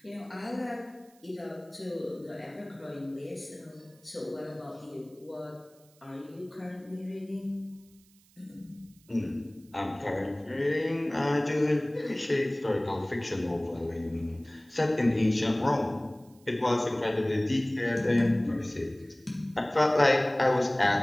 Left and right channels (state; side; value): noise; right; hiss, 30 dB below the sound